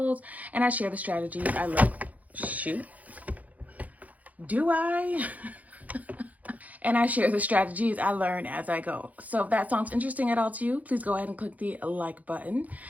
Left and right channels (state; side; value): late; left; 0.076 ms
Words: and I share the strategies I learn. And I share the strategies I learn as I go. So if that sounds interesting at all to you, please go ahead and click the like button